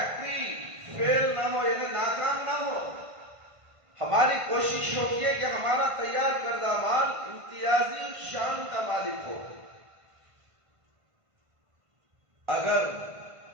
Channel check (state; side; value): late; left; 1.5 ms